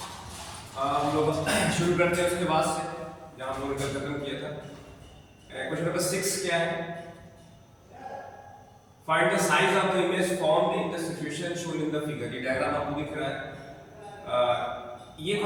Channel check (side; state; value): both; identical; correlation 1.00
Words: हम लोग शुरू करते हैं उसके बाद से जहाँ हम लोगों ने कल खत्म किया था। क्वेश्चन नंबर 6 क्या है? Find the size of the image formed in the situation shown in the figure. ये डायग्राम आपको दिख रहा है। ये